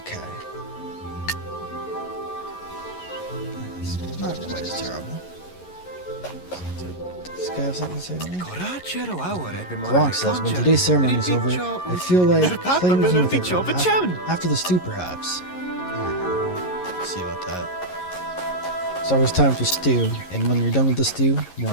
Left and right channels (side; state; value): right; late; 11 ms